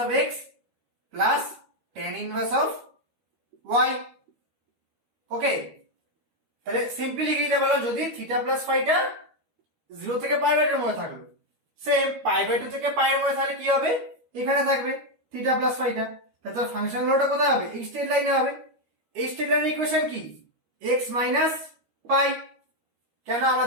of x plus tan inverse of y। Okay, তাহলে সিম্পলি লিখে দিতে পারলাম যদি থিটা প্লাস ফাইটা 0 থেকে π/2 এর মধ্যে থাকলো, সেম π/2 থেকে পাই এর মধ্যে তাহলে কি হবে, এখানে থাকবে থিটা প্লাস ফাইটা। তাহলে ফাংশন লোটা কোথায় হবে, এই স্ট্রেট লাইনে হবে। এই স্ট্রেট লাইনের ইকুয়েশন কি x মাইনাস পাই। কেন আমরা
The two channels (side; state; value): left; late; 13 ms